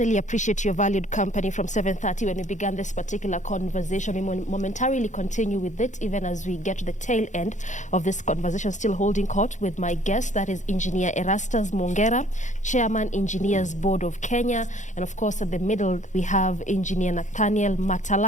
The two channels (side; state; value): right; late; 0.35 ms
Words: appreciate your valued company from 7:30 when we began this particular conversation. We momentarily continue with it, even as we get to the tail end of this conversation, still holding court with my guest, that is Engineer Erastus Mwongera, Chairman, Engineers Board of Kenya, and of course at the middle we have Engineer Nathaniel